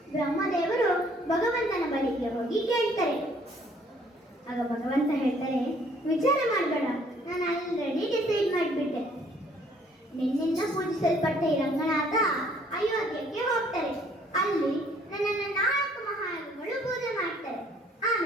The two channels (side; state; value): both; normal; correlation 0.61